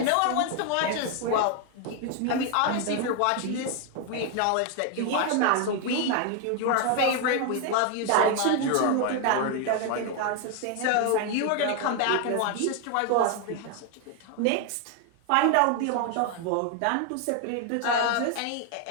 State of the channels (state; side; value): different; both; correlation 0.01